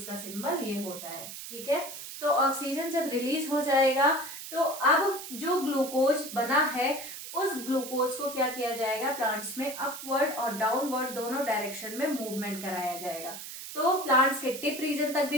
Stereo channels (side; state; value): right; noise; hiss, 10 dB below the sound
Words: का सिंबल ये होता है। ठीक है, तो ऑक्सीजन जब रिलीज हो जाएगा तो अब जो ग्लूकोज बना है उस ग्लूकोज को क्या किया जाएगा, प्लांट्स में अपवर्ड और डाउनवर्ड दोनों डायरेक्शन में मूवमेंट कराया जाएगा। तो प्लांट्स के टिप रीजन तक भी